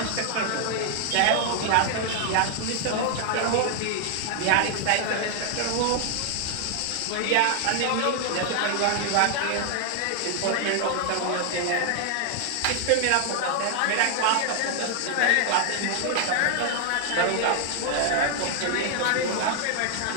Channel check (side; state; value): both; different; correlation 0.00